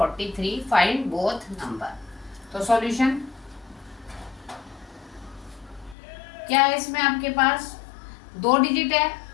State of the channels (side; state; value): right; drops out; at 6.0 s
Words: Find both number. तो solution क्या है, इसमें आपके पास 2 digit है,